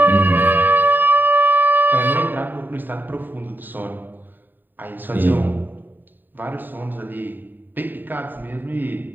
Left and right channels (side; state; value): left; late; 0.091 ms